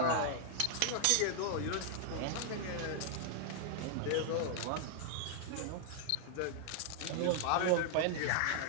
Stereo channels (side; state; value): both; different; correlation -0.01